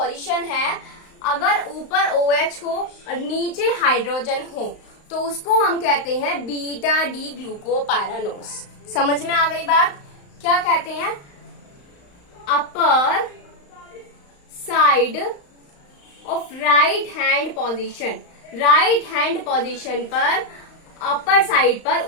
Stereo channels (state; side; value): late; right; 35 ms